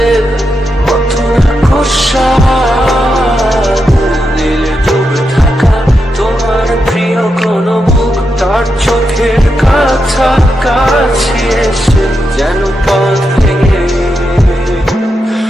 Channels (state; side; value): normal; both; correlation 0.85